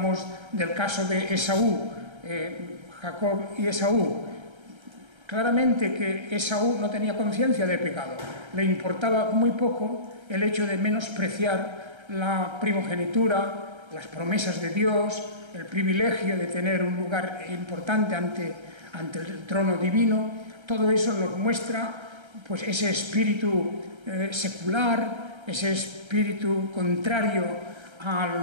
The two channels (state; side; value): late; left; 1.3 ms